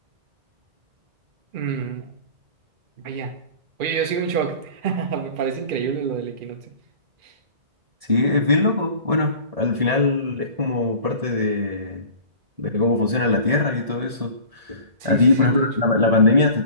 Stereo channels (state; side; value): late; left; 2.4 ms